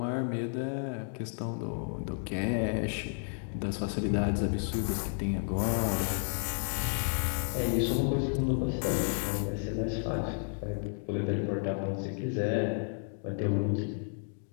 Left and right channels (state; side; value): silent; right; 56 dB below the other